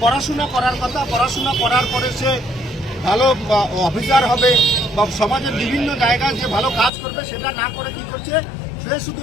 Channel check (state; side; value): drops out; right; at 6.9 s